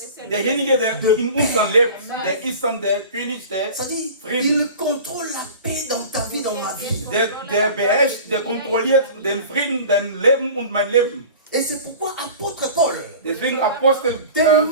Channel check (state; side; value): inverted; both; correlation -0.39